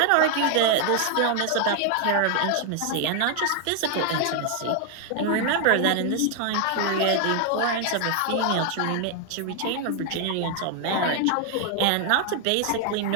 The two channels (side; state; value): both; different; correlation 0.00